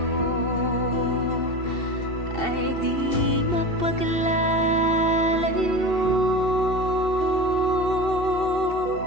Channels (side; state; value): right; late; 2.7 ms